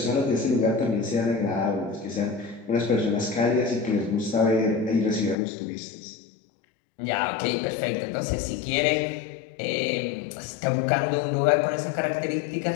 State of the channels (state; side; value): drops out; right; at 5.4 s